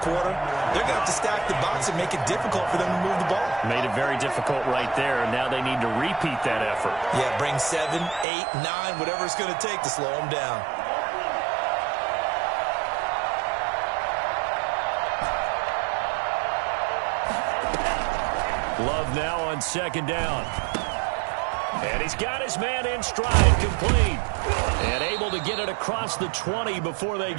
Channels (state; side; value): drops out; left; at 8.2 s